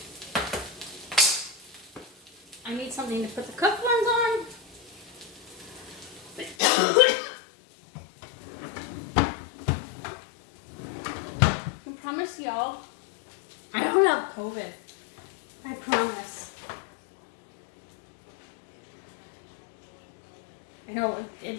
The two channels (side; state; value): right; drops out; at 6.6 s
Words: I need something to put the cooked ones on. I promise y'all, I don't have COVID. I promise. I know